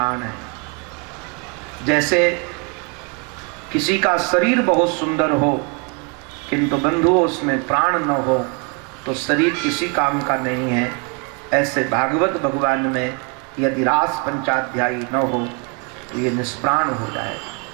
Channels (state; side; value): quieter; left; 34.2 dB